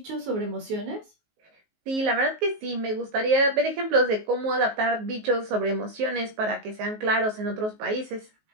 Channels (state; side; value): late; left; 19 ms